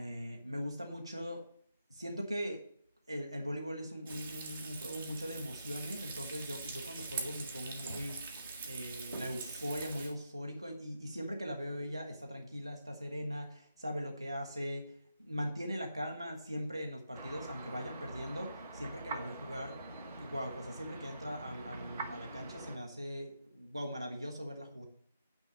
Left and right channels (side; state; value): both; inverted; correlation -0.84